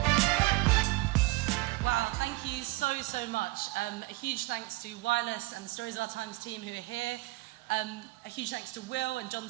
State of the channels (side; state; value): left; quieter; 21.5 dB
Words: So much. A huge thanks to Wireless and the Stories of Our Times team who are here. A huge thanks to Will and John